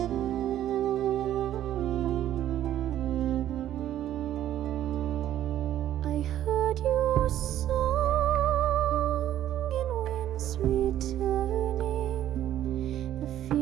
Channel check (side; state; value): left; quieter; 12.0 dB